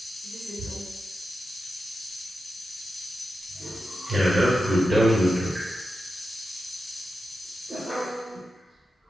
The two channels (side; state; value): both; normal; correlation 0.90